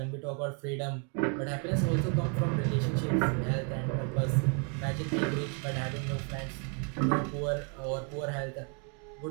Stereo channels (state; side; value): quieter; left; 39.1 dB